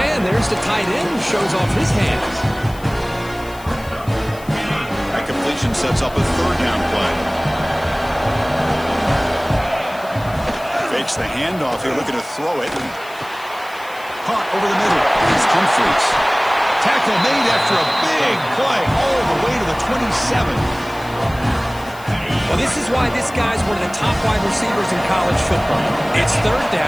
And there's the tight end who shows off his hands. That completion sets up a 3rd down play. Fakes the handoff here, looking to throw it. Caught over the middle. It's Humphries. Tackle made after a big play all the way to the 27. Well, this is why this guy's one of the top wide receivers in college football. It's third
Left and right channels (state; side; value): noise; left; hiss, 21 dB below the sound